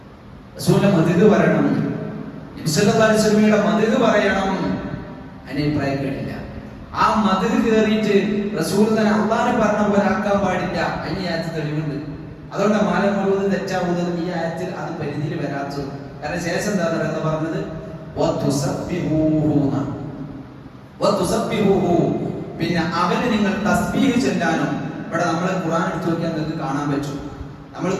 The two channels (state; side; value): identical; both; correlation 1.00